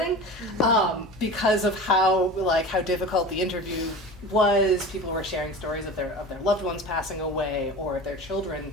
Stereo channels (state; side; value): normal; both; correlation 0.34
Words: because of how difficult the interview was. People were sharing stories of their loved ones passing away, or of their